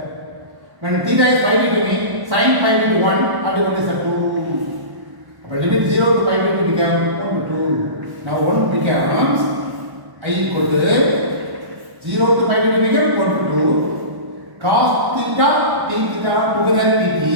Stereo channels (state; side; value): late; left; 1.1 ms